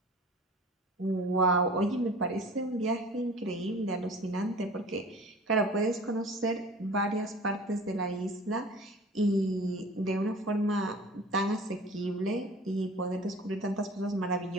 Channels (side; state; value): both; normal; correlation 0.43